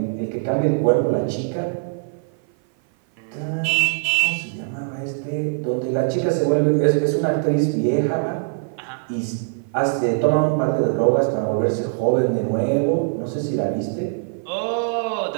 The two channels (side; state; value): left; silent; 55 dB below the other